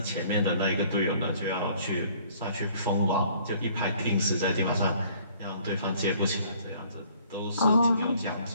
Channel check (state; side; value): inverted; both; correlation -0.58